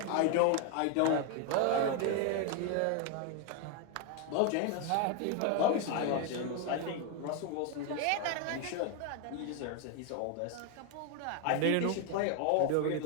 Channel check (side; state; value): both; different; correlation 0.01